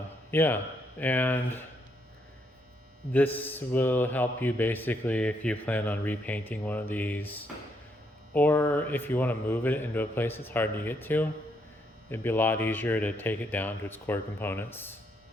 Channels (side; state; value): both; normal; correlation 0.75